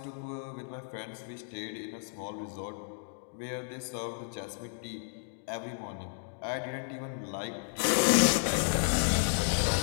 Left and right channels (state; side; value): silent; right; digital silence